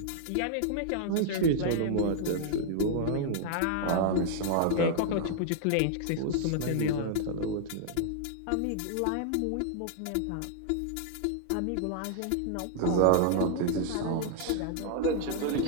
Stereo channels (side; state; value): both; different; correlation -0.01